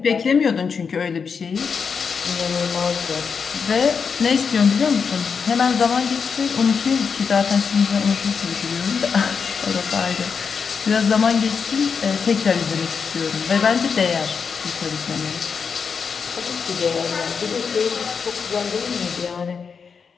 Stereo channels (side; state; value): right; quieter; 5.9 dB